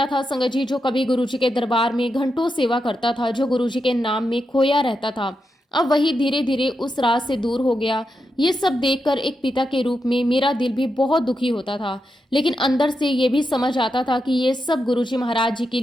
था संगत जी जो कभी गुरुजी के दरबार में घंटों सेवा करता था, जो गुरुजी के नाम में खोया रहता था, अब वही धीरे धीरे उस राह से दूर हो गया। ये सब देखकर एक पिता के रूप में मेरा दिल भी बहुत दुखी होता था, लेकिन अंदर से ये भी समझ आता था कि ये सब गुरुजी महाराज जी की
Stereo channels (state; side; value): normal; both; correlation 0.86